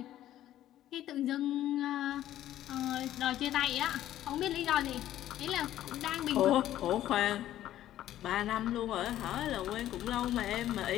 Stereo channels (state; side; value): quieter; right; 12.8 dB